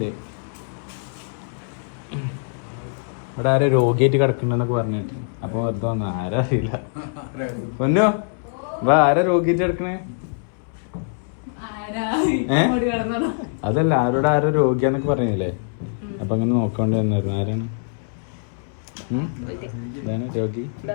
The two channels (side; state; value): right; silent; 63 dB below the other